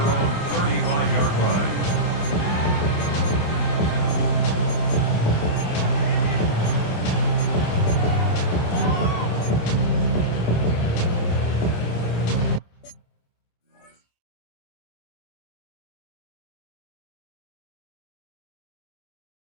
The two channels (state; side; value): late; right; 28 ms